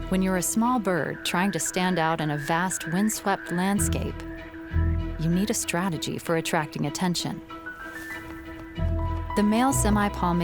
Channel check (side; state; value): both; identical; correlation 1.00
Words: When you're a small bird trying to stand out in a vast windswept landscape, you need a strategy for attracting attention. The male